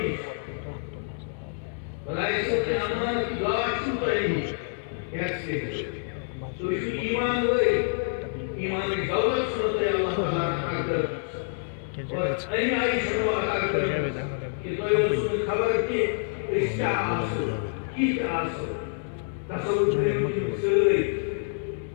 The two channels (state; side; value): silent; right; digital silence